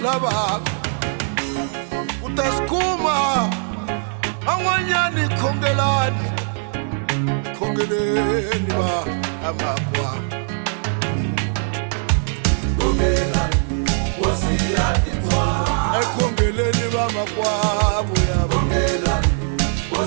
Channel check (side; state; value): left; silent; 59 dB below the other